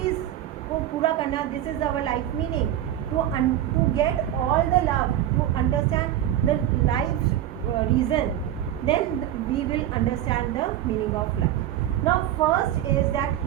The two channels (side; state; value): left; quieter; 11.9 dB